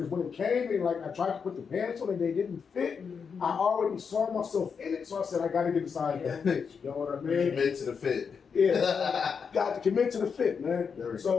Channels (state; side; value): quieter; right; 6.1 dB